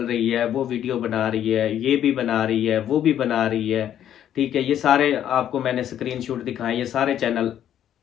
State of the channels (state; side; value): quieter; right; 10.5 dB